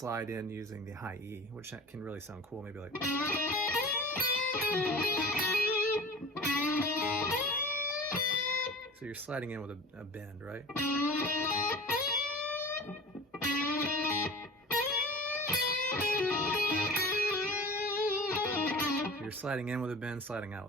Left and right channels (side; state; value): both; normal; correlation 0.38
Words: in using the high E, which can really sound cool, maybe like. So you're sliding in with a bend, right? You're sliding in with a bend, sliding